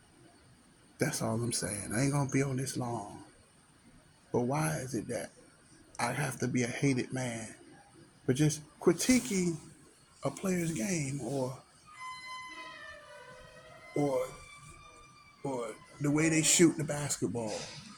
That's all I'm saying. I ain't gonna be on this long. But why is it that I have to be a hated man for just critiquing a player's game or or the way they shoot the basketball,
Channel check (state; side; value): identical; both; correlation 1.00